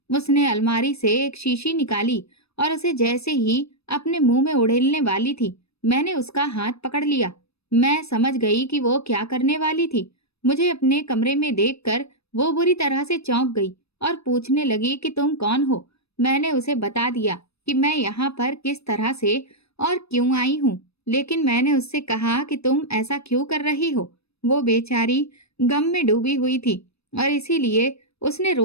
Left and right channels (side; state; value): right; late; 0.78 ms